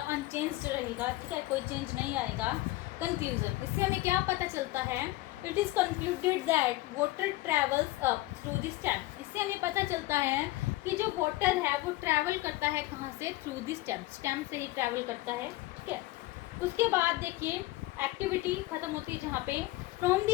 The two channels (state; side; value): quieter; right; 18.4 dB